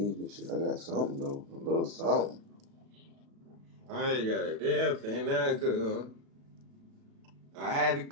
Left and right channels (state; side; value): late; left; 36 ms